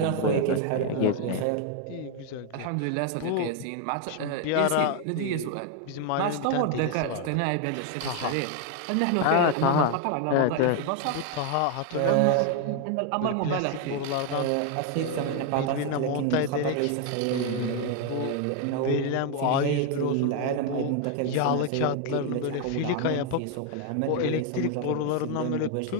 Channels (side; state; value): both; different; correlation 0.01